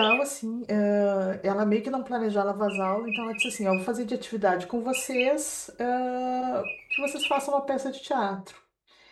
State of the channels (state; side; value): identical; both; correlation 1.00